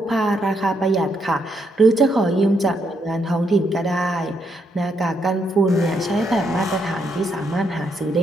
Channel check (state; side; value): normal; both; correlation 0.77